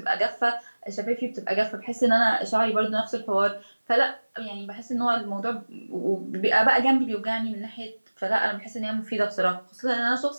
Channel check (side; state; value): both; inverted; correlation -1.00